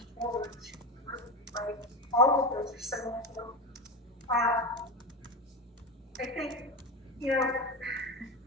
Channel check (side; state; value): both; normal; correlation 0.19